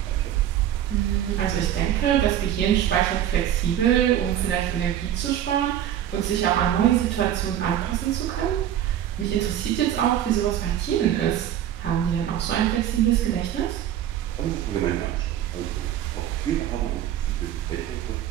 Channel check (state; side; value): quieter; left; 11.1 dB